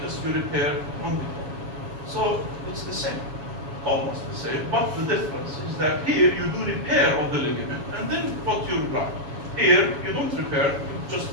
just you repair on the bone. So it's the same, almost the same, but the difference is that here you do repair of the ligament and then put your graft. Here you don't repair, you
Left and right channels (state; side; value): late; left; 7.2 ms